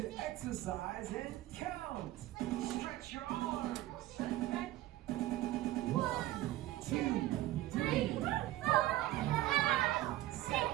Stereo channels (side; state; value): left; quieter; 15.5 dB